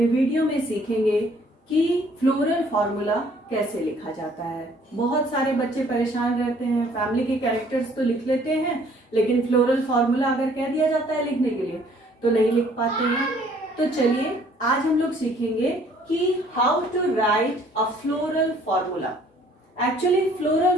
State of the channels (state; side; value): normal; both; correlation 0.59